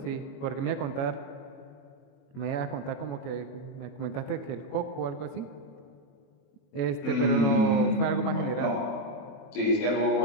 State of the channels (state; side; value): late; right; 21 ms